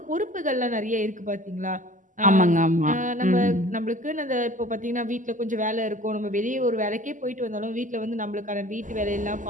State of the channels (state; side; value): late; left; 0.37 ms